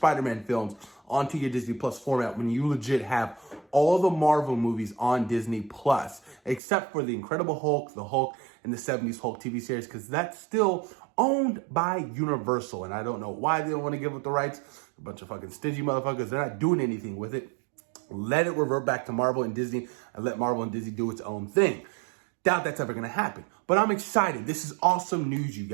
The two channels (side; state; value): left; drops out; at 6.6 s